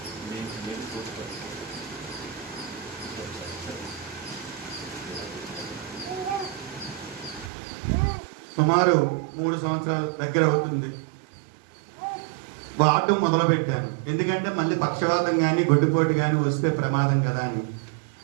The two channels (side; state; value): left; drops out; at 7.5 s